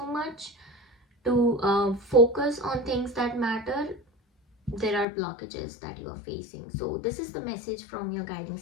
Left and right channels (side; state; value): right; drops out; at 5.1 s